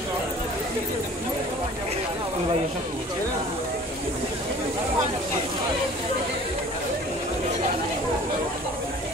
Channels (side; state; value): both; normal; correlation 0.47